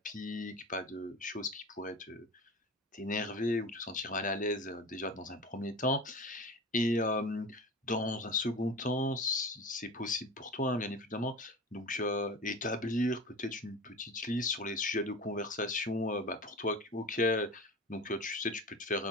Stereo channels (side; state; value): both; normal; correlation 0.33